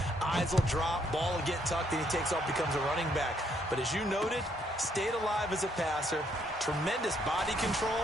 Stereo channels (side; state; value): both; normal; correlation 0.71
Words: eyes will drop, ball will get tucked, and he takes off, becomes a running back. But as you noted, stayed alive as a passer, tremendous body